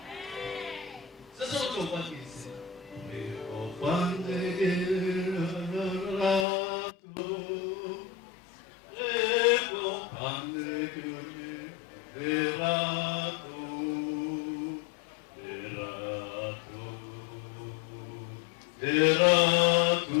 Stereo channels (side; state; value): right; drops out; at 6.5 s